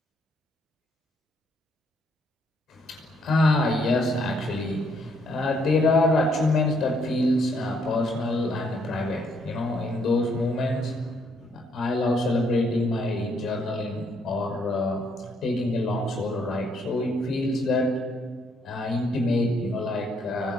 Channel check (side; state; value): both; normal; correlation 0.71